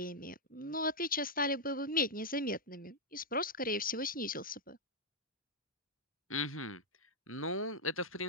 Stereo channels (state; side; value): normal; both; correlation -0.05